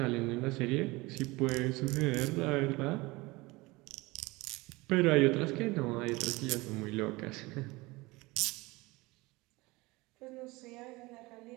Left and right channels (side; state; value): left; quieter; 22.5 dB